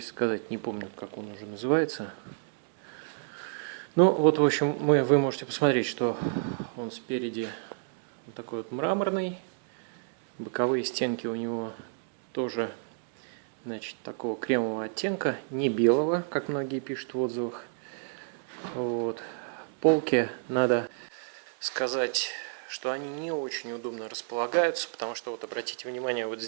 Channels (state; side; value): silent; left; digital silence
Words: сказать. Не помню, как он уже называется. Ну вот, в общем, вы можете посмотреть, что он спереди вот такой вот мраморный. Боковые стенки у него тоже, значит, такого кремового оттенка, не белого, как многие пишут в отзывах. Вот. Полки, надо сказать, что они не очень удобно располагаются, потому что, вот обратите внимание, вот